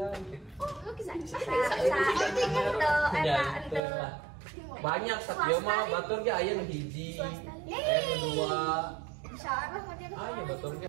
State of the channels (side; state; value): left; drops out; at 3.8 s